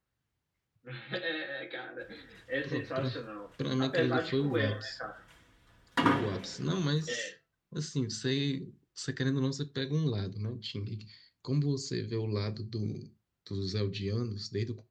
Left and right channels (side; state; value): both; identical; correlation 1.00